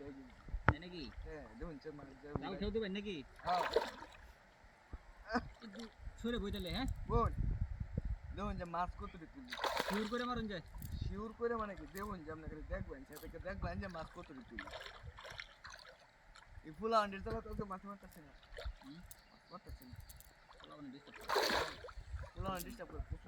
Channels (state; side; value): identical; both; correlation 1.00